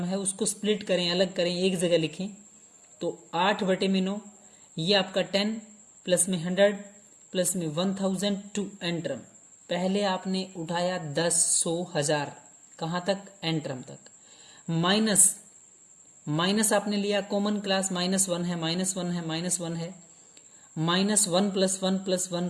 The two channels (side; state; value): both; identical; correlation 1.00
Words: है उसको स्प्लिट करें, अलग करें, एक जगह लिखें। तो 8 बटे में 9, ये आपका 10 प्लस में 100 प्लस में 1000, 2 n टर्म। पहले आपने उठाया 10, 100, 1000, कहाँ तक, n टर्म तक। माइनस आपने लिया कॉमन क्लास, -1 है, -1 है, -1 है, -1 प्लस 1 प्लस 1